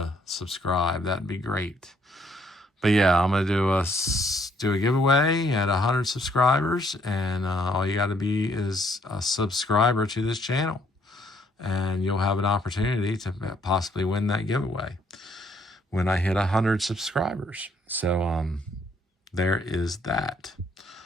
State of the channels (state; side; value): normal; both; correlation 0.67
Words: subscribe. That'd be great. But yeah, I'm going to do a giveaway at 100 subscribers. And all you got to be is a subscriber to this channel. And you'll have an opportunity to possibly win that giveaway when I hit 100 subscribers. So there is that.